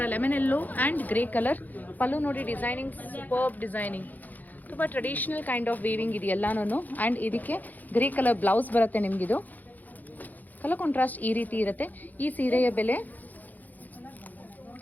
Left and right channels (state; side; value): late; right; 0.082 ms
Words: ಲೆಮನೆಲ್ಲೋ ಆ್ಯಂಡ್ ಗ್ರೇ ಕಲರ್ ಪಲ್ಲು ನೋಡಿ. ಡಿಸೈನಿಂಗ್ ಸೂಪರ್ಬ್ ಡಿಸೈನಿಂಗ್, ತುಂಬ ಟ್ರೆಡಿಷನಲ್ ಕೈಂಡ್ ಆಫ್ ವೀವಿಂಗ್ ಇದು ಎಲ್ಲಾನು. ಆ್ಯಂಡ್ ಇದಕ್ಕೆ ಗ್ರೇ ಕಲರ್ ಬ್ಲೌಸ್ ಬರುತ್ತೆ ನಿಮಗಿದು. ಕಲರ್ ಕಾಂಟ್ರಾಸ್ಟ್ ಈ ರೀತಿ ಇರುತ್ತೆ. ಈ ಸೀರೆಯ ಬೆಲೆ